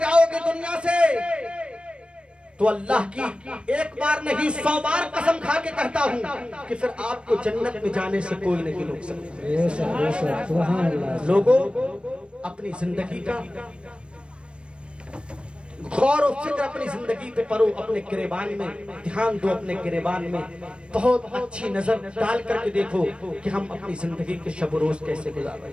दुनिया से तो अल्लाह की एक बार नहीं 100 बार कसम खा के कहता हूँ कि फिर आपको जन्नत में जाने से कोई नहीं रोक सकता। लोगों, अपनी जिंदगी का गौर और फिक्र अपनी जिंदगी पे करो, अपने गिरेबान में ध्यान दो, अपने गिरेबान में बहुत अच्छी नजर डाल करके देखो कि हम अपनी जिंदगी के शब रोज कैसे गुजार रहे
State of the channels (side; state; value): left; late; 0.057 ms